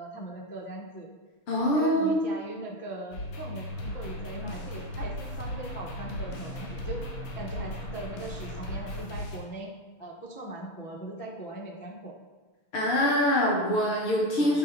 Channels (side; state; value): right; late; 6.7 ms